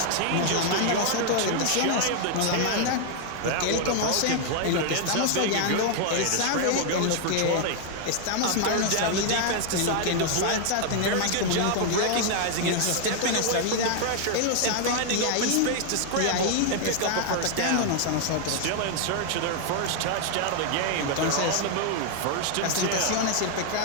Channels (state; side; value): different; both; correlation 0.00